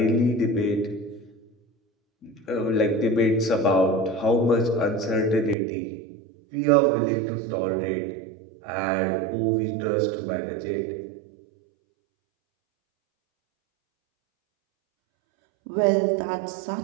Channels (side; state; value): left; drops out; at 5.6 s